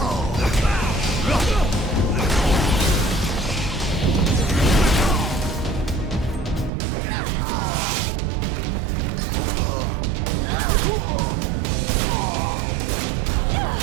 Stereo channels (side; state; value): left; drops out; at 6.7 s